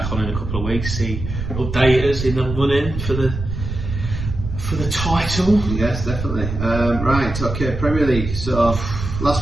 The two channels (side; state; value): right; noise; rumble, 6 dB below the sound